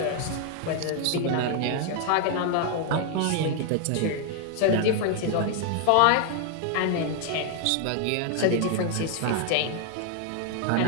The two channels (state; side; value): different; both; correlation 0.00